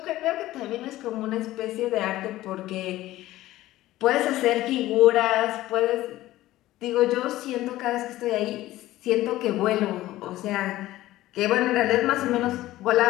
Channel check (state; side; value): quieter; right; 15.9 dB